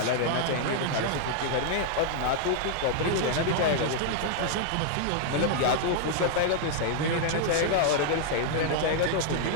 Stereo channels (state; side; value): different; both; correlation -0.01